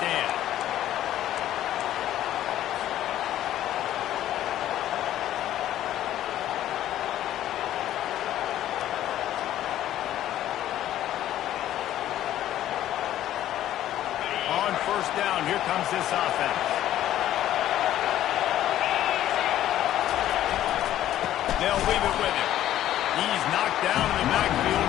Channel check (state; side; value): quieter; right; 12.6 dB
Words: On first down, here comes this offense. They'll leave it with him. He's knocked down in the